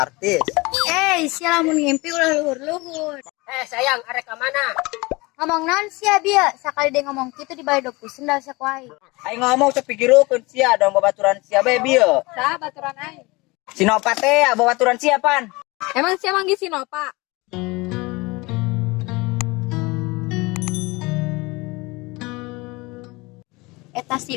artis. Sia lamun ngimpi ulah luhur-luhur. Sayang, arek ka mana? Ngomong naon sia bieu, sakali dia ngomong kitu di balik doku sendal sakuai. Aing ngomong sok pikirukeun sia dong babaturan sia bae bieu. Saha baturan aing? Sinopa teh babaturan sia pan. Emang sia manggih Sinopa? Eta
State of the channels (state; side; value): quieter; right; 23.8 dB